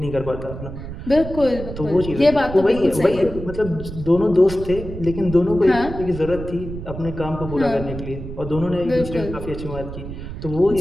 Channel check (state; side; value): noise; right; rumble, 9 dB below the sound